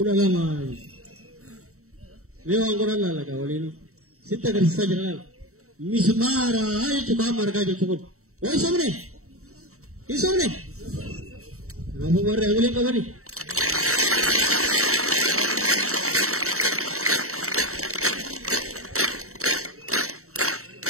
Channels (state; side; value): late; left; 0.64 ms